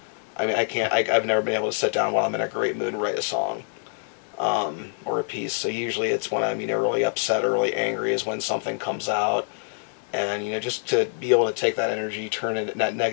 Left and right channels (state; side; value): silent; right; 61 dB below the other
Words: I mean, I've never been able to sit down while I'm in a great mood and write a song, or a piece. So usually it's when I'm, really upset or really angry is when something comes out. And just to be able to take that energy, that